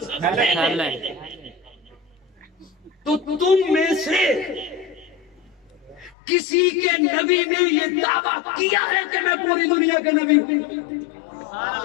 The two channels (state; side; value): drops out; right; at 6.2 s